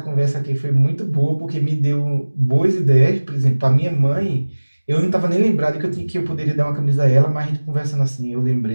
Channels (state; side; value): inverted; both; correlation -1.00